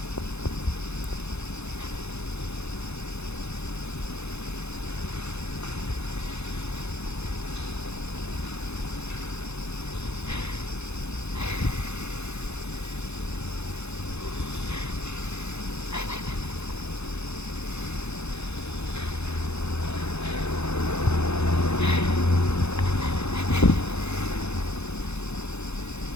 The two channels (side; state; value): right; late; 0.81 ms